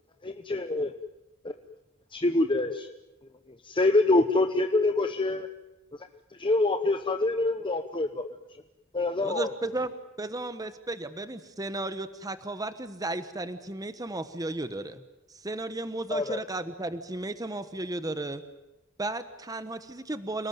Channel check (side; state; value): both; normal; correlation 0.57